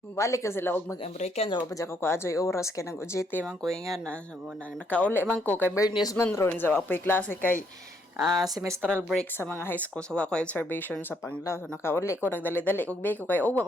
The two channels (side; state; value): both; normal; correlation 0.71